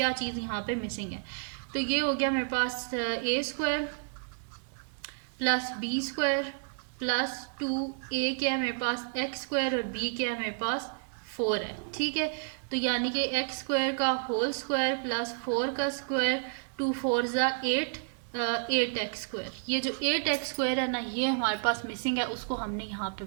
चीज़ यहाँ पे मिसिंग है। तो ये हो गया मेरे पास a square plus B square plus 2a क्या है मेरे पास x स्क्वायर और b क्या है मेरे पास 4 है, ठीक है। तो यानी कि x स्क्वायर का होल स्क्वायर प्लस 4 का स्क्वायर 2 4 ज़ा 8 8x स्क्वायर, ये जो 8x स्क्वायर है ना ये हमारे पास मिसिंग है, उसको हमने यहाँ पे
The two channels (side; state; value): left; silent; digital silence